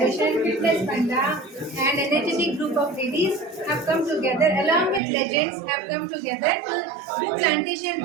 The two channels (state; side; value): drops out; left; at 5.0 s